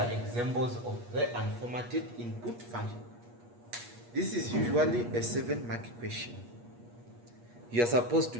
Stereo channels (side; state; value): left; late; 8.4 ms